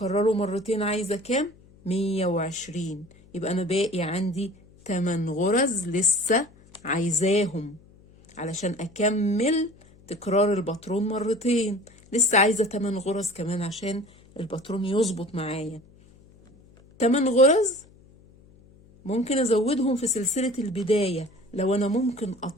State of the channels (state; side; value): noise; left; hum, 26 dB below the sound